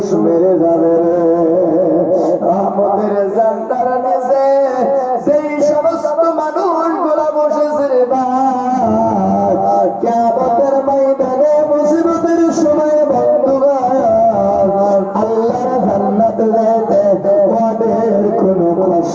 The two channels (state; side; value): identical; both; correlation 1.00